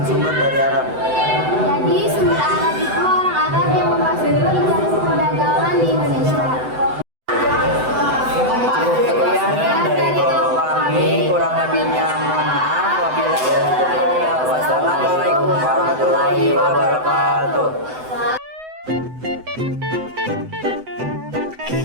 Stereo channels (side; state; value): left; late; 7.9 ms